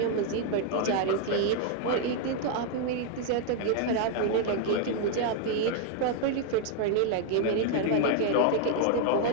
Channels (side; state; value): both; different; correlation 0.00